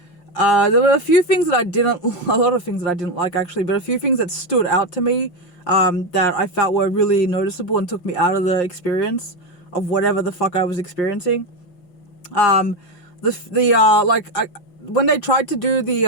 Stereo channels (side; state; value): right; late; 6.0 ms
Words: were a few things that a lot of things that I didn't like, actually, but a few things that stood out to me, that I felt were really noticeable and took me out of the experience of whatever the fuck I was experiencing. When they tried to do